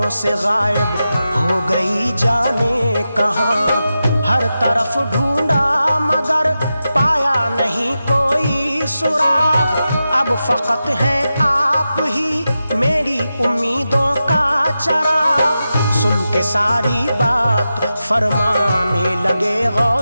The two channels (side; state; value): both; inverted; correlation -0.91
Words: سے غائب ہو گئی جانے کہاں۔ ہر طرف ڈھونڈا مگر پایا نہیں کوئی سراغ، اب فقط ہیں آپ ہی میری امیدوں کا چراغ۔ سن کے ساری بات فرمانے لگے